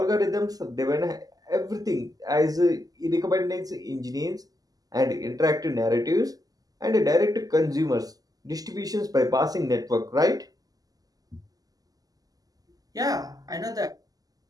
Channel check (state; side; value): late; left; 0.18 ms